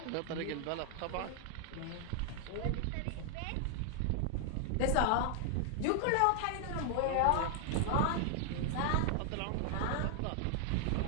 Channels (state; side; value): different; both; correlation 0.00